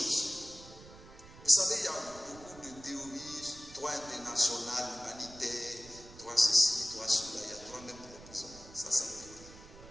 Vous savez, il y a beaucoup de théories, droit international, humanitaire, droit ceci, droit cela, il y a droit même pour la prison. Ça me dit.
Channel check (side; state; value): right; noise; rumble, 19 dB below the sound